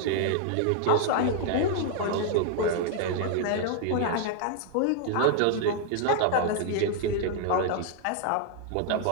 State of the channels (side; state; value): both; different; correlation 0.00